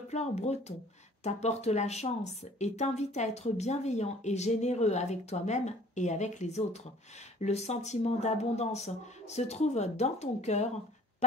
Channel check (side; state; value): both; normal; correlation 0.53